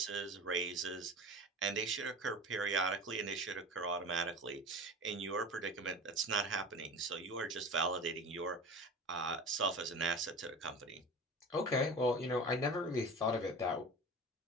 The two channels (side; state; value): both; normal; correlation 0.34